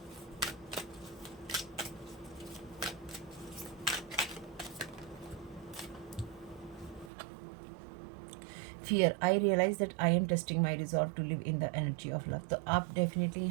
Fear, I realize that I am testing my resolve to live in the energy of love, तो आप definitely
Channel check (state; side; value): drops out; left; at 7.1 s